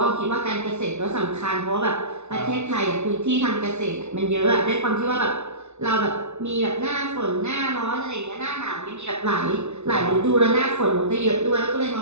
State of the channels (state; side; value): late; left; 0.82 ms